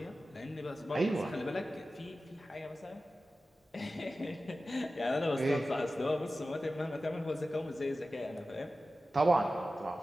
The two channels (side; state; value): both; normal; correlation 0.94